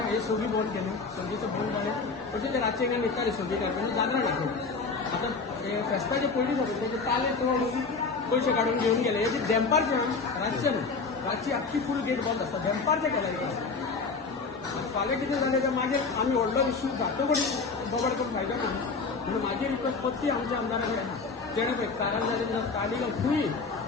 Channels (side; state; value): right; quieter; 4.4 dB